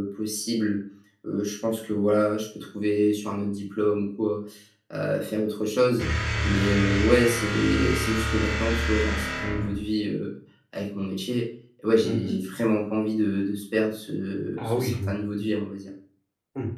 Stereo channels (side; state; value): both; identical; correlation 1.00